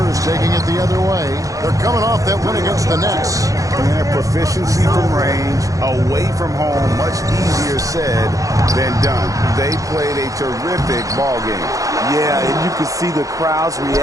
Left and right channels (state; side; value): late; left; 0.16 ms